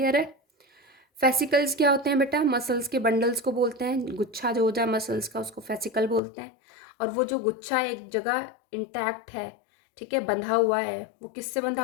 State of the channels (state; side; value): drops out; right; at 6.2 s